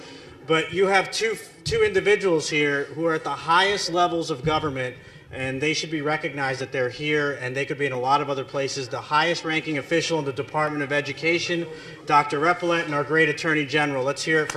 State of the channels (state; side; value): identical; both; correlation 1.00